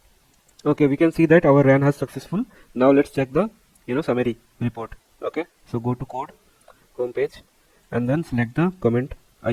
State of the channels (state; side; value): identical; both; correlation 1.00